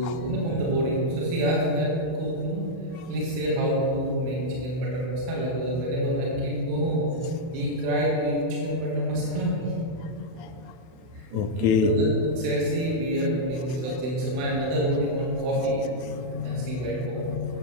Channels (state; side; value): late; left; 31 ms